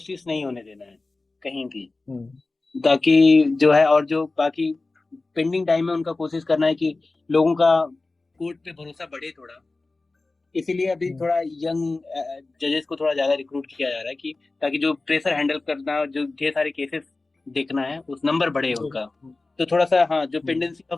नहीं होने देना है कहीं भी, ताकि जो है और जो बाकी पेंडिंग टाइम है उनका कोशिश करना है कि लोगों का कोर्ट पे भरोसा बढ़े थोड़ा। इसीलिए अभी थोड़ा यंग जजेस को थोड़ा ज्यादा रिक्रूट किया जा रहा है कि ताकि जो प्रेशर हैंडल करना, जो ढेर सारे केसेस देखना है, उस नंबर बढ़े उनका। तो थोड़ा सा हाँ, जो पेंडेंसी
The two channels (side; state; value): right; quieter; 3.4 dB